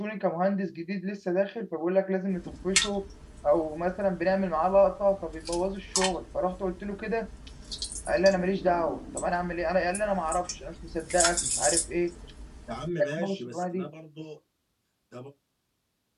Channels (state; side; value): identical; both; correlation 1.00